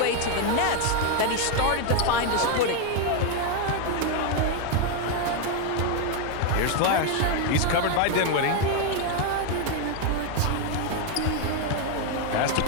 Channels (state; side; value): different; both; correlation 0.01